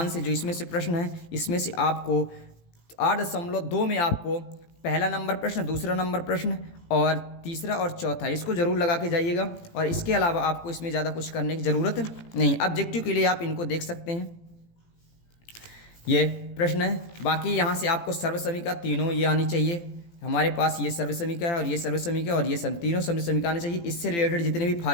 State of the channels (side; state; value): right; late; 18 ms